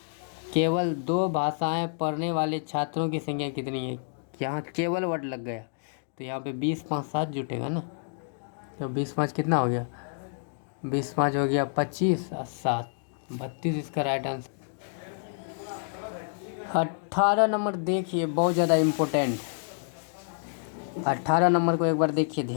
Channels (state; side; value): silent; right; digital silence